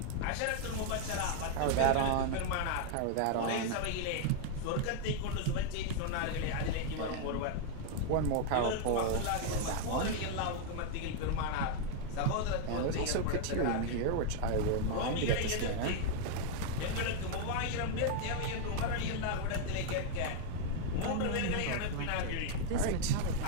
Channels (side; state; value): both; different; correlation 0.00